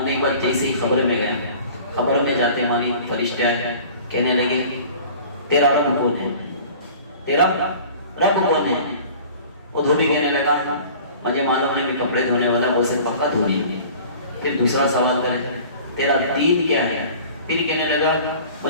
کے بعد جیسے ہی خبر میں گیا، خبر میں جاتے ہماری فرشتے آئے، کہنے لگے تیرا رب کون ہے، تیرا رب کون ہے. وہ دھوبی کہنے لگا مجھے معلوم نہیں، میں کپڑے دھونے والا غوث پاک کا دھوبی. پھر دوسرا سوال کرے تیرا دین کیا ہے. پھر کہنے لگا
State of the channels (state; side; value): inverted; both; correlation -0.45